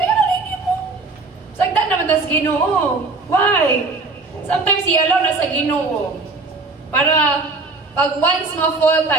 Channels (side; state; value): left; quieter; 3.7 dB